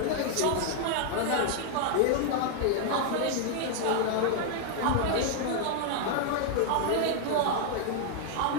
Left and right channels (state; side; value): different; both; correlation 0.00